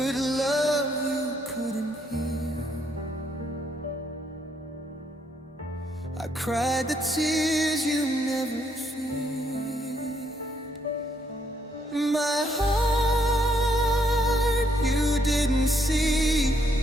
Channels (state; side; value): normal; both; correlation 0.73